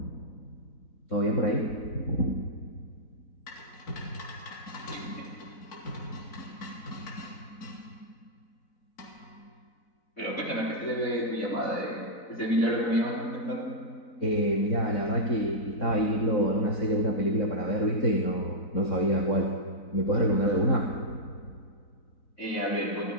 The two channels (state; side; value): late; right; 4.0 ms